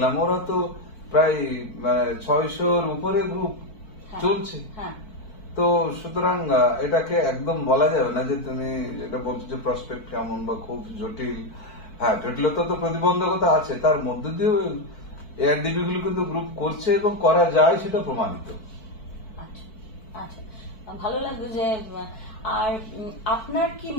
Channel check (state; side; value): late; right; 4.6 ms